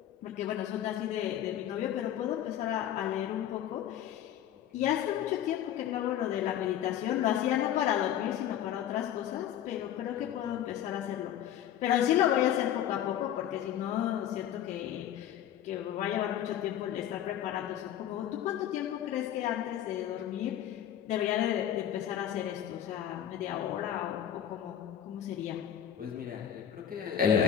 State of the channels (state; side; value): quieter; right; 10.6 dB